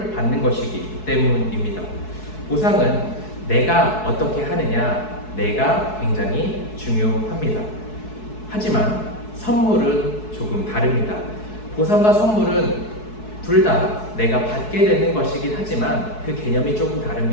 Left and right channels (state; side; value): late; right; 4.7 ms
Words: 받는 것이기 때문입니다. 보상은 내가 어떻게 하느냐, 내가 굉장히 중요합니다. 하지만 선물은 조금 다릅니다. 보상과 선물은 둘 다 내가 받게 되는 것이긴 하지만 그 개념이 조금